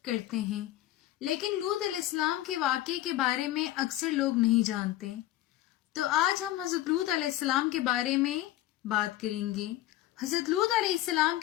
کرتے ہیں، لیکن لوط علیہ السلام کے واقعے کے بارے میں اکثر لوگ نہیں جانتے۔ تو آج ہم حضرت لوط علیہ السلام کے بارے میں بات کریں گے۔ حضرت لوط علیہ السلام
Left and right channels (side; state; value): right; quieter; 14.8 dB